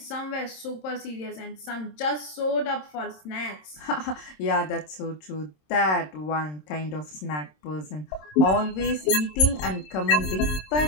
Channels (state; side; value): late; right; 27 ms